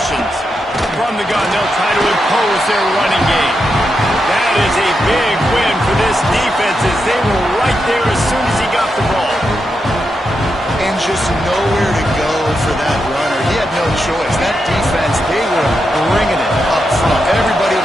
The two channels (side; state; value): both; normal; correlation 0.85